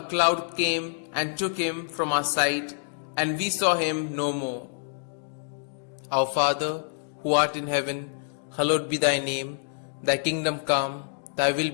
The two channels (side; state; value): right; silent; digital silence